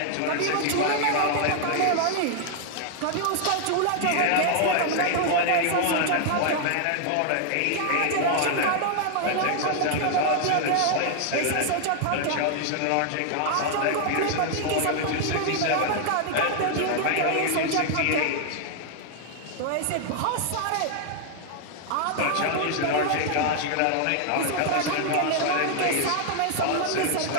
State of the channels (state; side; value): different; both; correlation 0.00